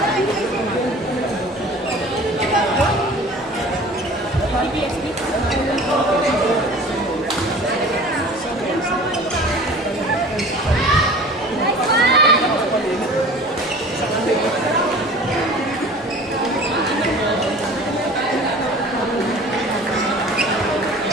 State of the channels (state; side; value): normal; both; correlation 0.43